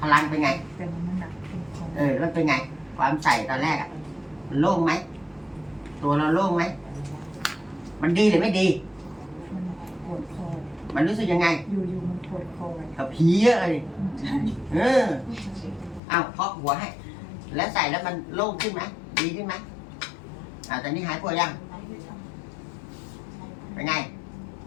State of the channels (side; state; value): right; drops out; at 16.0 s